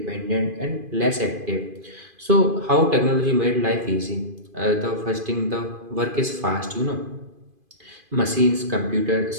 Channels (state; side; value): late; left; 2.5 ms